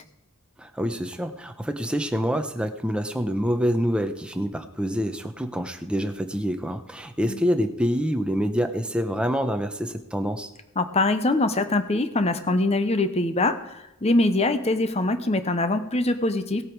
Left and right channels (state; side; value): normal; both; correlation 0.66